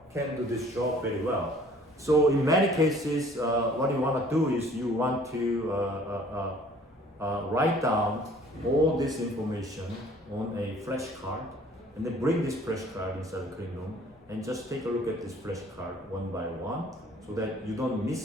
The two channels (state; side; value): normal; both; correlation 0.54